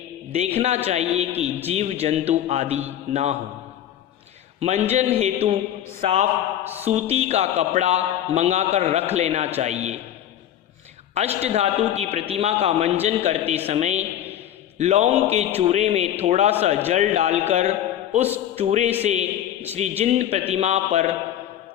देखना चाहिए कि जीव जंतु आदि ना हो। मंजन हेतु साफ सूती का कपड़ा मंगाकर रख लेना चाहिए। अष्ट धातु की प्रतिमा का मंजन करते समय लौंग के चूरे में थोड़ा सा जल डालकर उस चूरे से श्री जिन प्रतिमा पर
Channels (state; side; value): quieter; right; 11.2 dB